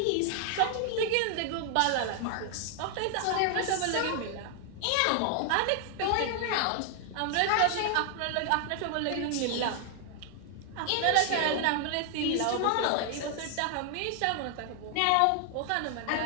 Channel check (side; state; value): both; different; correlation 0.00